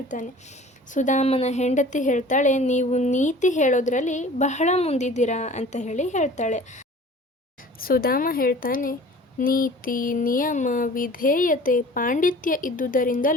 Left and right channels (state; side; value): normal; both; correlation 0.45